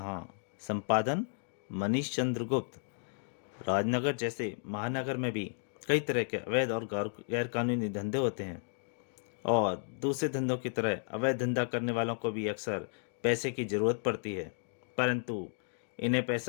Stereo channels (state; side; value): silent; right; digital silence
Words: संपादन मनीष चंद्र गुप्त। राजनगर जैसे महानगर में भी कई तरह के अवैध और गैर कानूनी धंधे होते हैं और दूसरे धंधों की तरह अवैध धंधा करने वालों को भी अक्सर पैसे की जरूरत पड़ती है, परंतु इन्हें